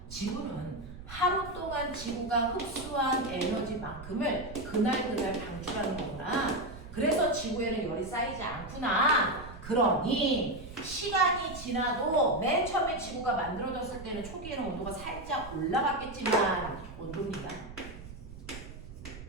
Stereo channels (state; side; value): noise; right; rumble, 14 dB below the sound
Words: 지구는 하루 동안 지구가 흡수한 에너지만큼을 그날 방출하는 거구나. 그래서 지구에는 열이 쌓이지 않구나. 그러니 시간이 지나도 맨 처음에 지구가 만들어졌을 때는 초기에는 온도가 살짝 올라갔겠지만 온도입니다.